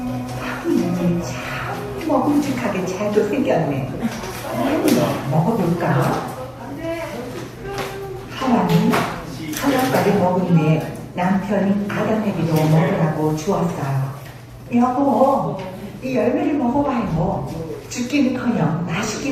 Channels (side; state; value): both; identical; correlation 1.00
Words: 하긴 참 먹음직하게 잘도 생겼네. 먹어볼까? 하나님 선악과를 먹은 후에 남편인 아담에게도 먹으라고 주었어요. 여보, 이 열매를 먹어봐요. 죽기는커녕